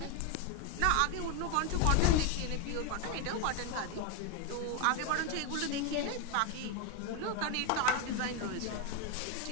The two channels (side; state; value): both; different; correlation 0.01